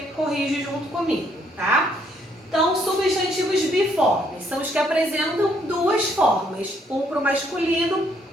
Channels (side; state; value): both; normal; correlation 0.69